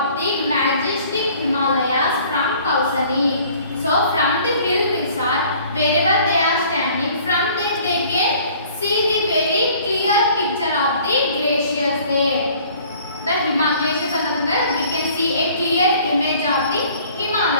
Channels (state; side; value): inverted; both; correlation -0.53